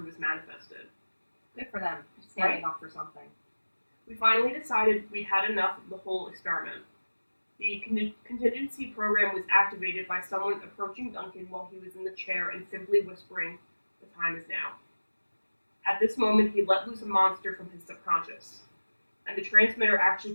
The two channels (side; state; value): both; inverted; correlation -1.00